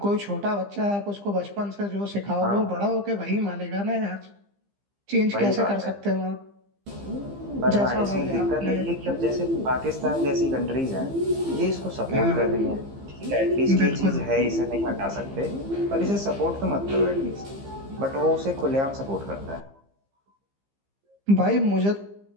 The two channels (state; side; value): late; left; 15 ms